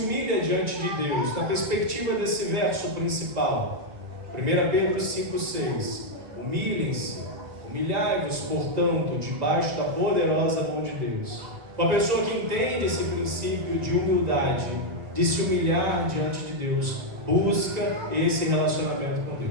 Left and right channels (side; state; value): left; late; 1.9 ms